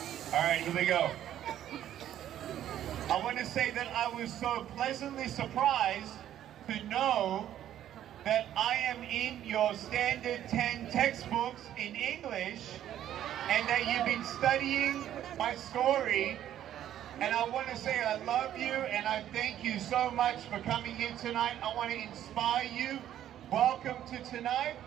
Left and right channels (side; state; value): left; quieter; 11.5 dB